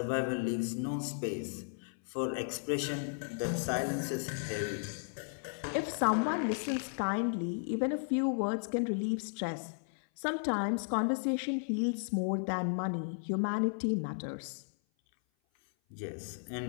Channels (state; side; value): silent; right; 55 dB below the other